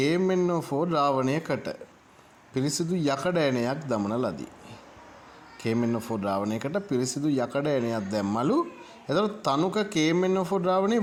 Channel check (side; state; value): both; identical; correlation 1.00